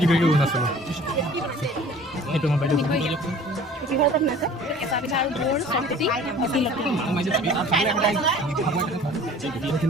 কৰিলোঁ অৰুণাচলৰ সেইটো মই বাইদেউ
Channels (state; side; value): normal; both; correlation 0.47